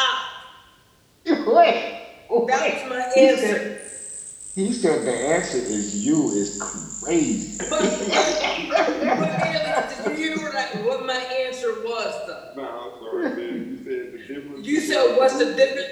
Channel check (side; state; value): both; identical; correlation 1.00